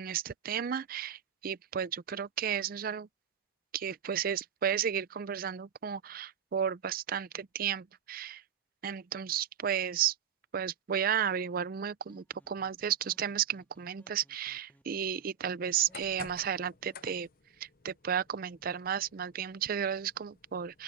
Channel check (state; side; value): quieter; left; 8.4 dB